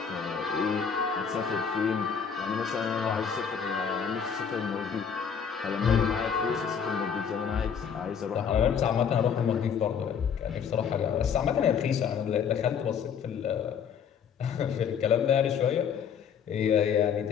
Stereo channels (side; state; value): right; quieter; 7.1 dB